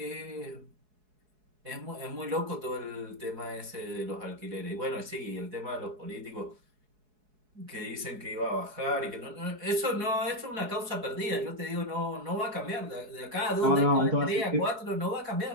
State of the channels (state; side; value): late; left; 4.7 ms